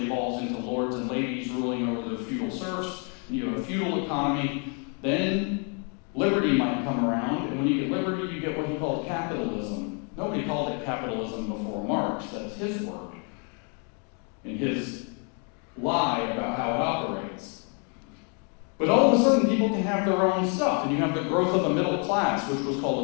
evolves into lords and ladies ruling over their feudal serfs. And you have a feudal economy. Then liberty might come around, and when you get liberty, you get what he called capitalism. Nobody called it capitalism before Marx. That's his word, and his lie about how it operates. But all of a sudden, people can have their own stuff, and you have the growth of a middle class, which was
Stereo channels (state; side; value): quieter; right; 38.3 dB